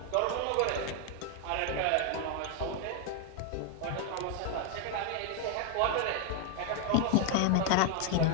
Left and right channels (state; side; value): different; both; correlation 0.01